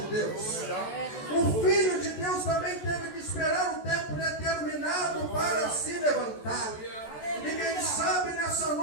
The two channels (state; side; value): late; right; 14 ms